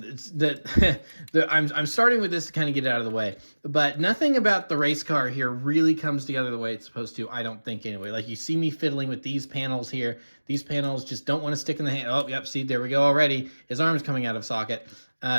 that I'm starting with this to kind of get it out of the way, but nothing about the race car here really comes together the way it's supposed to, I don't think, anyway. Like, you see me fiddling with these panels here. These panels just don't want to stick in the hand. Oh, yep, see, there we go already. His arm's coming out of socket.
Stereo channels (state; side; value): inverted; both; correlation -1.00